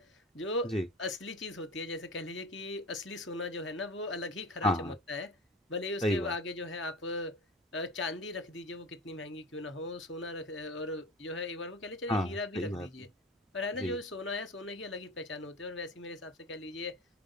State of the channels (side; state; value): both; normal; correlation 0.33